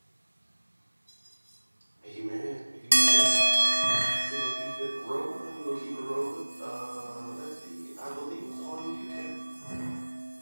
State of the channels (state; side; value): inverted; both; correlation -1.00